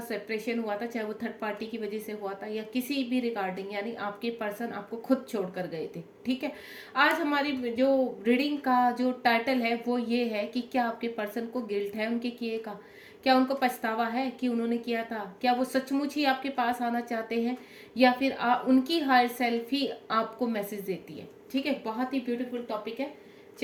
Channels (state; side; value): identical; both; correlation 1.00